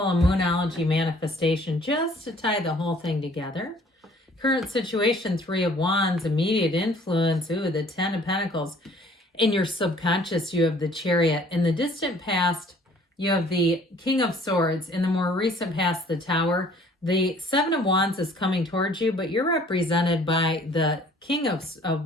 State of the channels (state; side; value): normal; both; correlation 0.55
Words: a Moonology manifestation just to tie the whole thing together. Current situation, 3 of Wands, immediate influence, the 10 of Pentacles. In your subconscious, you have the Chariot. In the distant past, you have the King of Swords. In the more recent past, the Tower. The 7 of Wands is coming towards you, but you're represented by the King of